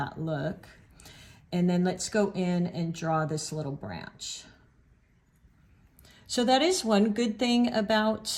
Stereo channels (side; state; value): both; identical; correlation 1.00